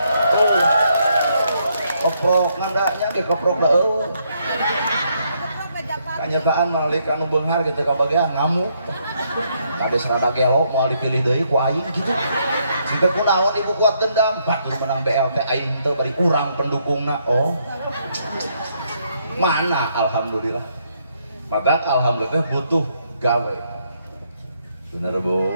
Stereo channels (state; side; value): inverted; both; correlation -0.74